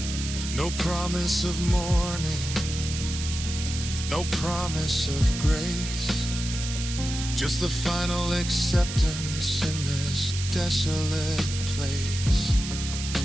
No promise of morning, no promise of grace, just the final acceptance in this desolate place.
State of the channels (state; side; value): noise; right; hiss, 7 dB below the sound